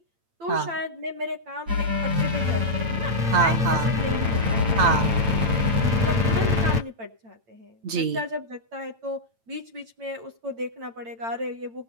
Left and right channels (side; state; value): left; late; 8.9 ms